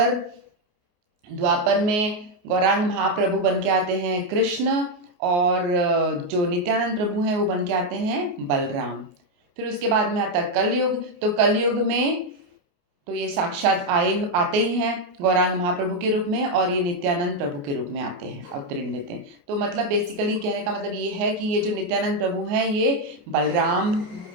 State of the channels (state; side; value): late; left; 28 ms